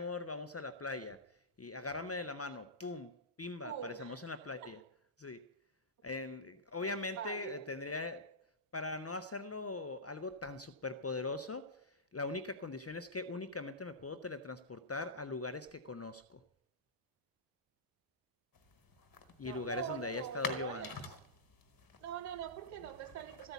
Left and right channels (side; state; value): both; normal; correlation -0.16